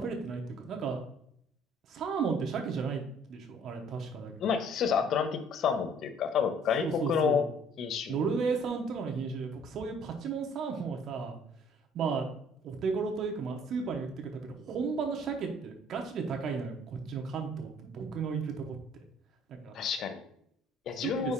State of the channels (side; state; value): both; normal; correlation 0.57